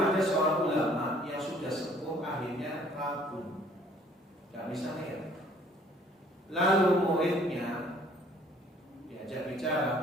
seorang ulama yang sudah sepuh, akhirnya ragu, nggak bisa lihat. Lalu muridnya diajak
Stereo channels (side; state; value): both; normal; correlation 0.58